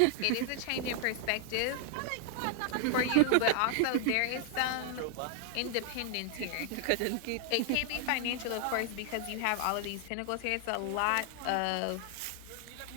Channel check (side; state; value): both; different; correlation 0.00